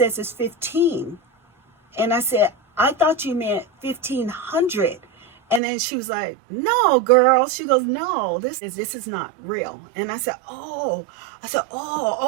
it's 15. And I said, I thought you meant 1,500. And then she was like, no, girl. She goes, no, this is not real. And I said, oh,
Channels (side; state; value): left; drops out; at 5.6 s